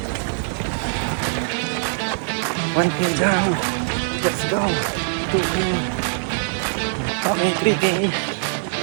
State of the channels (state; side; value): silent; left; digital silence